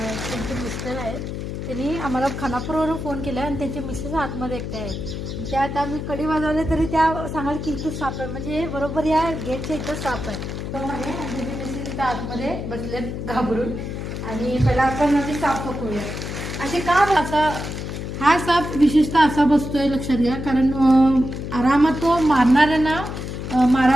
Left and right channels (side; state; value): left; noise; hum, 6 dB below the sound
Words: मिस्टर आहेत. त्यांनी आम्हाला खानापूरवरून फोन केला आणि त्यांचे मिसेस आतमध्ये एकटे आहेत. त्या आता आम्ही कडी वाजवले तरी त्या सांगाल की इथं साप आहे, म्हणजे बरोबर या गेटच्या इथं साप आहे. आणि त्यांचे मिसेस इथं आतमध्ये बसलेत घाबरून. आणि पहिला आपण आधी साप पकडूया. असे का असा हा साप विशेषतः असा बसतोय लक्षात घ्या, कारण आरामात तो मारणाऱ्यांना